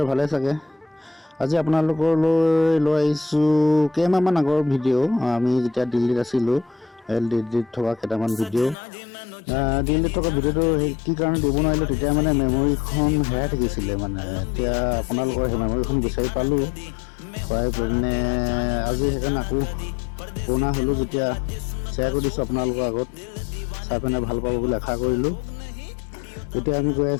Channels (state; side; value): drops out; right; at 8.8 s